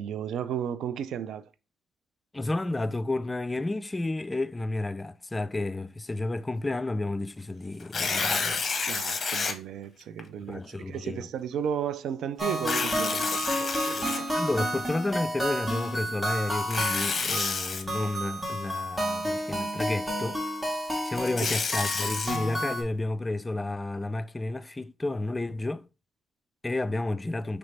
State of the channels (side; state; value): both; normal; correlation 0.86